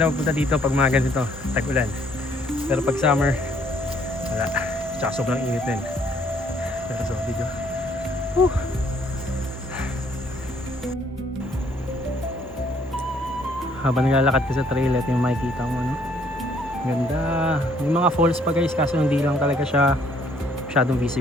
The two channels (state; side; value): normal; both; correlation 0.64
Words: magpunta dito pag mga ganito, tag-ulan. Pero pag summer, wala. Tsaka sobrang init din. Pero so, video. Habang naglalakad ka sa trail, ito yung makikita mo, no? Ganda. May mga falls pa guys, kaso hindi lang talaga siya masyadong